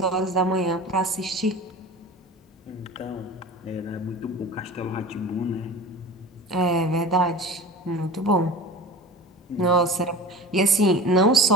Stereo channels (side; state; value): both; normal; correlation 0.35